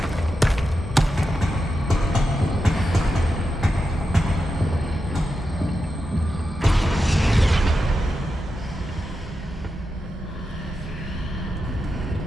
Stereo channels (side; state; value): both; normal; correlation 0.89